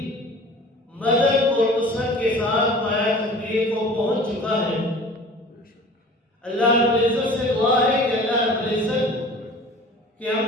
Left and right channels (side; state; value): both; normal; correlation 0.43